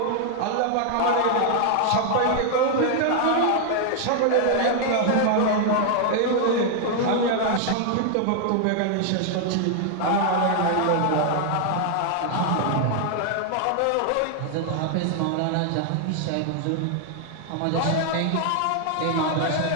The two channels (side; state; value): both; different; correlation 0.00